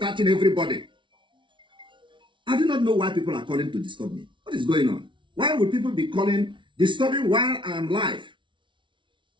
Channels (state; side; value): late; left; 0.24 ms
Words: everybody. I do not know why people are calling to disturb me. What is going on? Why would people be calling, disturbing while I am live?